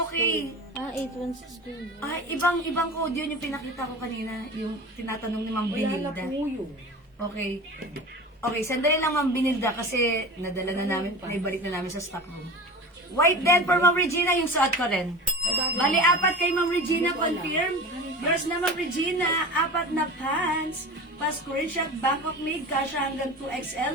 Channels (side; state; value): both; normal; correlation 0.33